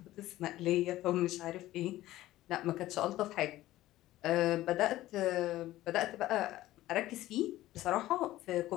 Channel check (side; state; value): right; quieter; 15.6 dB